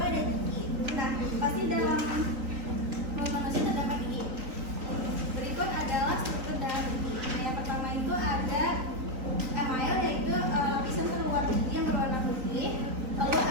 ada gigi. Nah, pasti dalam mulut manusia terdapat gigi. Berikut adalah struktur dalam gigi. Nah, yang pertama itu ada email, yaitu lapisan terluar gigi yang berwarna putih. Lalu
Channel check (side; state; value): left; late; 3.9 ms